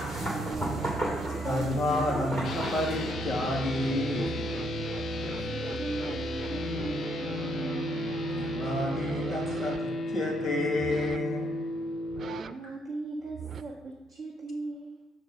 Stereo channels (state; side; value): normal; both; correlation 0.72